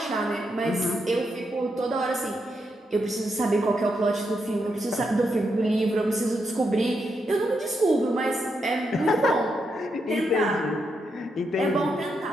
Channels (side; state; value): both; normal; correlation 0.82